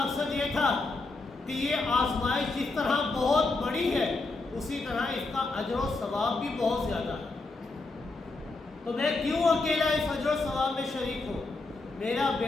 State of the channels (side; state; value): right; quieter; 3.4 dB